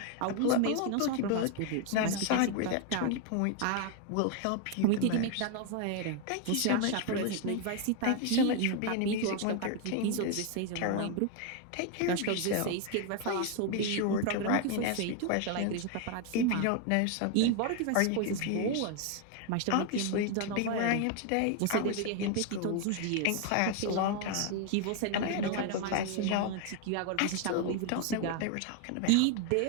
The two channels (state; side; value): different; both; correlation 0.01